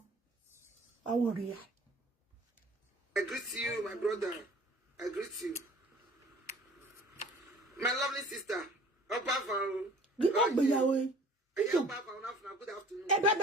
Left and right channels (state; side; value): normal; both; correlation 0.48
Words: I worry. I greet you, my brother. I greet you. My lovely sister. Good afternoon. Good afternoon.